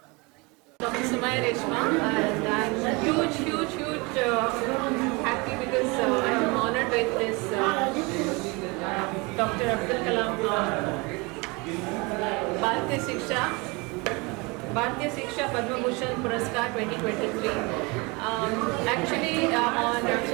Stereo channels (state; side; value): quieter; left; 27.2 dB